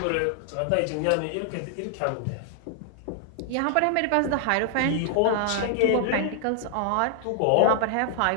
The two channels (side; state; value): both; different; correlation 0.00